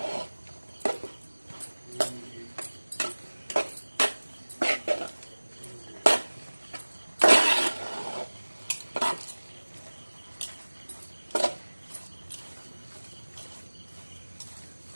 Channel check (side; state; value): both; inverted; correlation -1.00